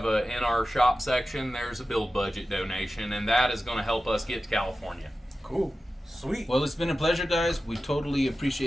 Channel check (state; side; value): normal; both; correlation 0.94